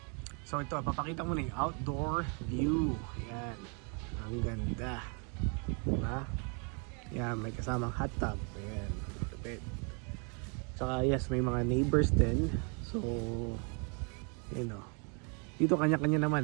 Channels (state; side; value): quieter; left; 36.9 dB